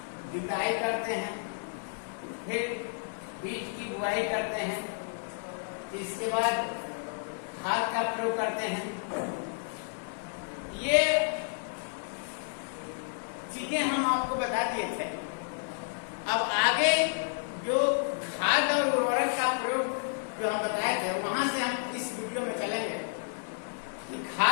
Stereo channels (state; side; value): silent; right; digital silence